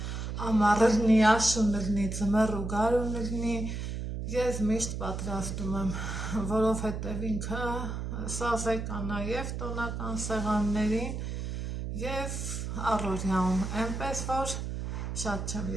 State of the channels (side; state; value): right; noise; hum, 4 dB below the sound